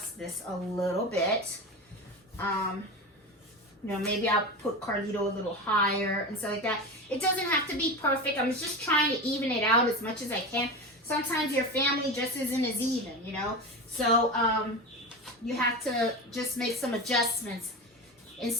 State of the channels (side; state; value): both; normal; correlation 0.24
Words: this a little bit. You know, maybe I'll put Carlito a little higher and stuff like that. It doesn't have to be perfect. I'm just trying to even it out as much as I can. Sometimes your family just isn't as even, you know. So you have to just make some adjustments in